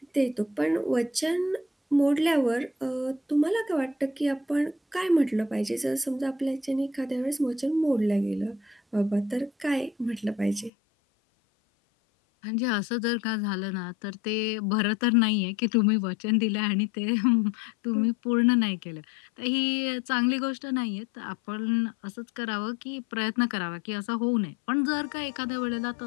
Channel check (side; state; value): right; drops out; at 10.7 s